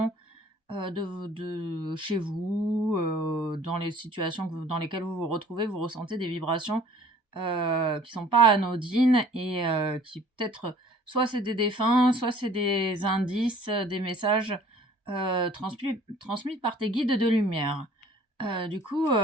de chez vous, dans les situations dans lesquelles vous vous retrouvez, vous ressentez des vibrations qui sont pas anodines et qui peut-être soit c'est des défunts, soit c'est des indices, des messages transmis par tes guides de lumière. Du coup,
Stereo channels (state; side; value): normal; both; correlation 0.53